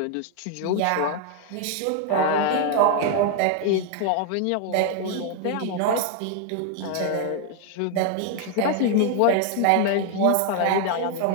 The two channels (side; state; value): both; different; correlation 0.00